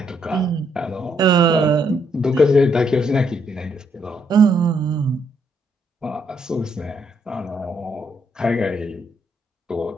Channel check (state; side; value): normal; both; correlation 0.74